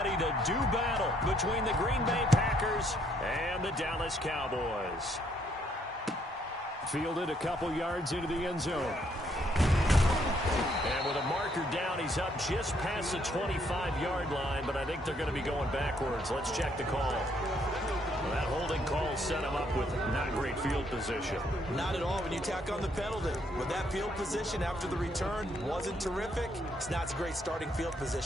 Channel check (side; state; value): both; normal; correlation 0.70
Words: to do battle between the Green Bay Packers and the Dallas Cowboys. Fielded a couple yards into the end zone. And with a marker down, he's up just past the 25-yard line, but I think they're going to be going backwards. Let's check the call. Well, that holding call set him up with not great field position. Not at all when you tack on the penalty. But that field position after the return wasn't terrific. It's not a great starting field